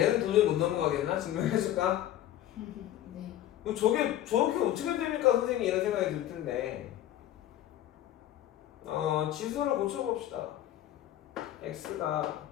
도저히 못 넘어가겠나? 증명해줄까? 네. 저게 저렇게 어떻게 됩니까, 선생님? 이런 생각이 들 텐데. 지수를 고쳐봅시다. x가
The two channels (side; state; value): right; quieter; 12.6 dB